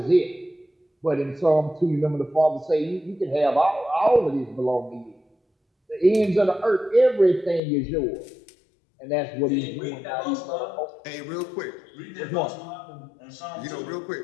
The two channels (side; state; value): right; drops out; at 7.6 s